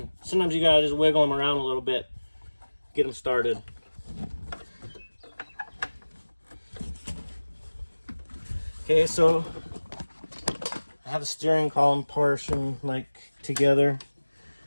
Sometimes you gotta just wiggle them around a little bit, get them started. Okay, so I have the steering column portion like together.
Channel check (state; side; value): inverted; both; correlation -1.00